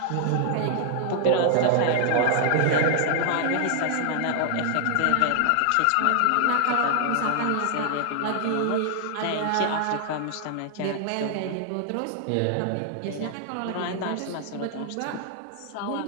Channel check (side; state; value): both; different; correlation 0.00